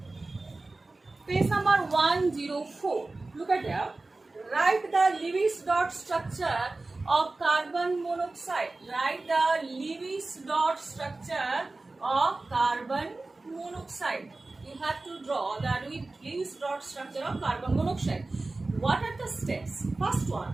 page number 104. Look at there. Write the Lewis dot structure of carbon monoxide. Write the Lewis dot structure of carbon monoxide. You have to draw the Lewis dot structure of carbon monoxide. What are the steps? First one,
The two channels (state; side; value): quieter; left; 3.2 dB